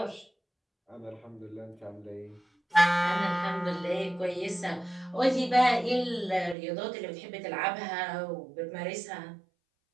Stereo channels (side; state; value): left; drops out; at 6.6 s